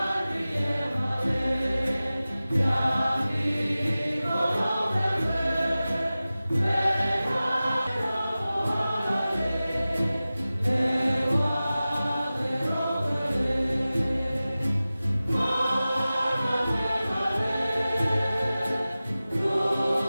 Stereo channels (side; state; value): both; inverted; correlation -0.96